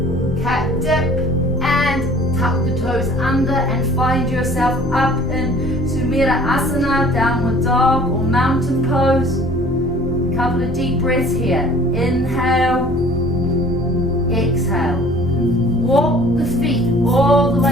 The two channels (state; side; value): normal; both; correlation 0.50